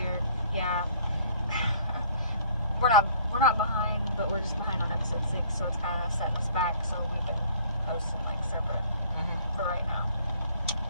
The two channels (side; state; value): both; inverted; correlation -0.55